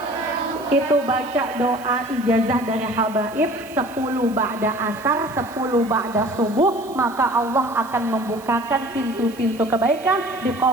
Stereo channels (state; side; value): noise; right; hiss, 22 dB below the sound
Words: Itu baca doa ijazah dari habaib 10 ba'da asar, 10 ba'da subuh, maka Allah akan membukakan pintu-pintu kebaikan,